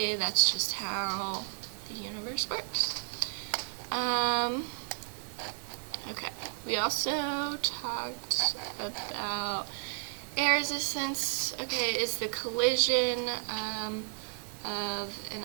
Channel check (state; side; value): silent; left; digital silence